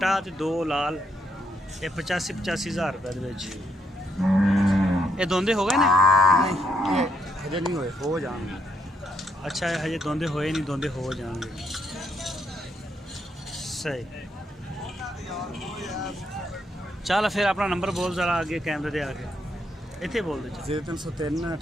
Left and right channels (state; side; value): normal; both; correlation 0.76